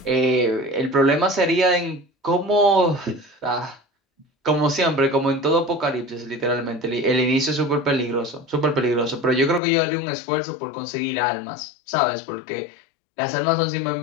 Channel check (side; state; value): right; drops out; at 9.6 s